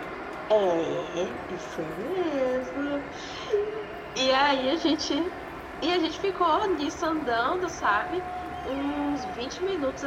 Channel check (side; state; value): both; identical; correlation 1.00